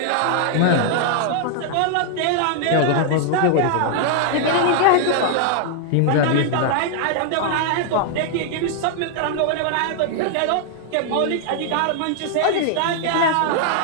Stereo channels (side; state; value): both; different; correlation 0.00